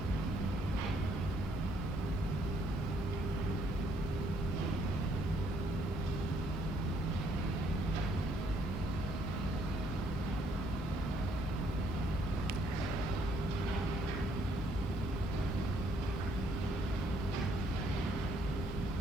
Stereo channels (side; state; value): both; normal; correlation 0.67